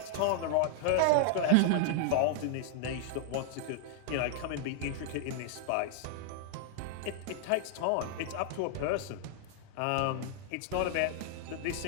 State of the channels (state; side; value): different; both; correlation -0.01